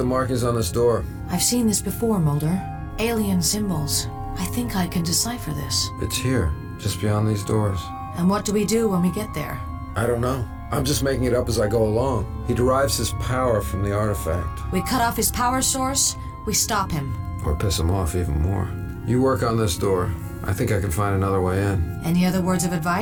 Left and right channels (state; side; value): identical; both; correlation 1.00